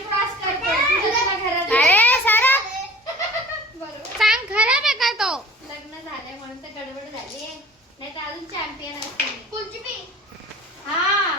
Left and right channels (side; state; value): both; normal; correlation 0.46